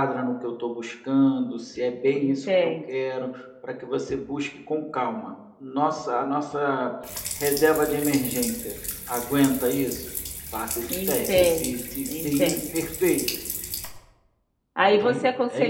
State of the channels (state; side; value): identical; both; correlation 1.00